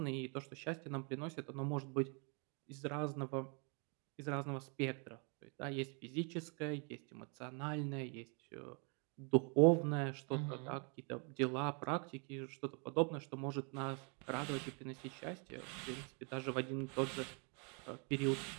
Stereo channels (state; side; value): quieter; left; 36.3 dB